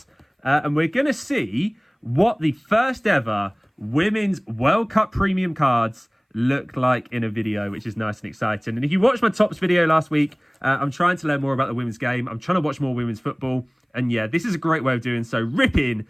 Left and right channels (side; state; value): both; identical; correlation 1.00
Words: And we're going to see what the first ever Women's World Cup premium cards look like in a video, which is nice and exciting. And if you watched my tops video last week, I'm trying to learn more about the women's game. I'm trying to watch more women's football. And yeah, this is a great way of doing so. Ripping